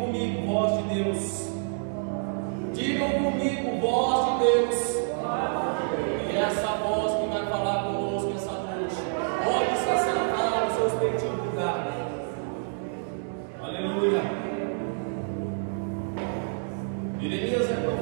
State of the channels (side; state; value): left; silent; digital silence